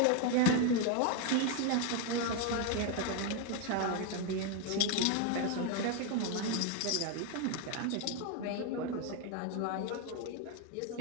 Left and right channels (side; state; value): both; different; correlation 0.01